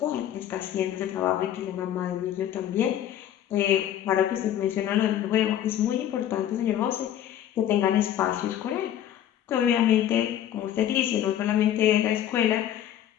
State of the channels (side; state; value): right; quieter; 11.1 dB